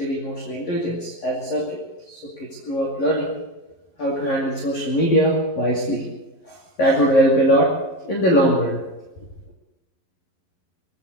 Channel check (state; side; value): late; right; 11 ms